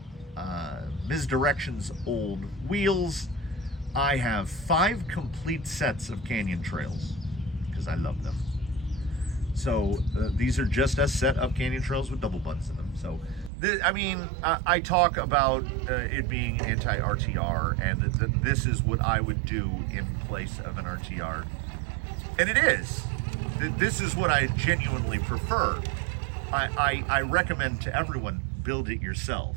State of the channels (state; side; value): drops out; left; at 13.5 s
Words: Misdirection's old wheels. I have 5 complete sets of Canyon Trails because I love them. So these are just a set of Canyon Trails with double buttons in them. So I talk about it being anti-RTR, and this is what I would do in place of an RTR. And it is. This is what I genuinely prefer. I recommend to everyone, build it yourself.